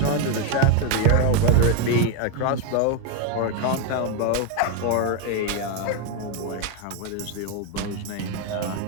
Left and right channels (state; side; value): different; both; correlation 0.01